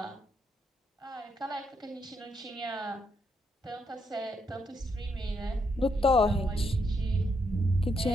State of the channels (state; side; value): normal; both; correlation 0.78